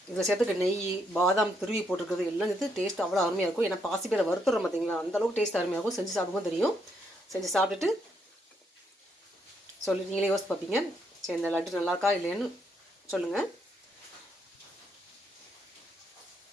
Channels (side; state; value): both; normal; correlation 0.75